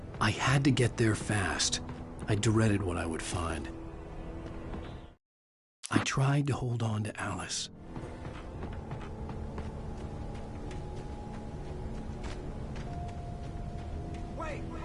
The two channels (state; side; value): identical; both; correlation 1.00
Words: I had to get there fast. I dreaded what I would find. I tried to hold on to Alice. Wait!